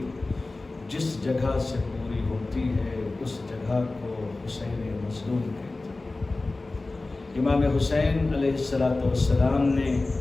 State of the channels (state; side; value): quieter; right; 3.2 dB